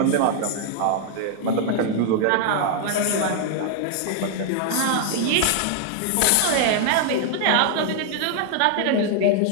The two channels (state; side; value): different; both; correlation 0.00